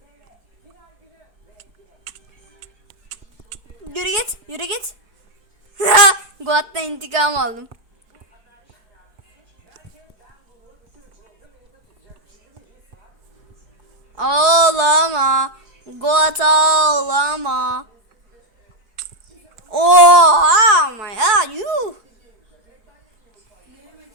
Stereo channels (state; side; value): late; left; 4.7 ms